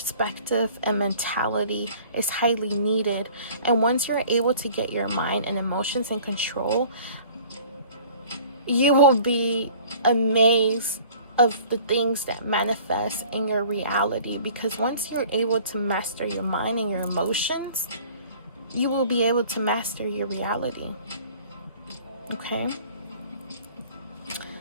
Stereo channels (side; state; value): both; inverted; correlation -0.49